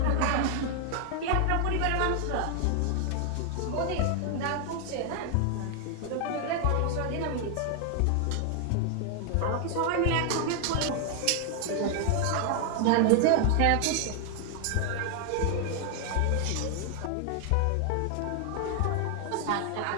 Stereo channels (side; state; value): both; different; correlation 0.00